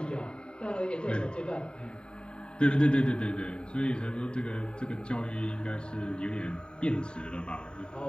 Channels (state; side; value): late; right; 0.050 ms